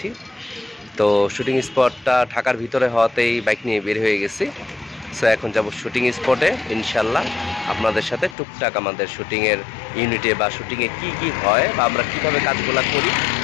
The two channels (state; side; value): drops out; right; at 8.3 s